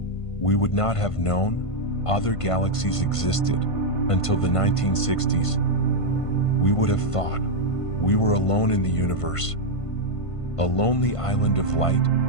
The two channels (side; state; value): right; late; 1.5 ms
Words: we would not have known other galaxies existed until the 1960s. We would have thought we were alone in the universe, a lonely island of light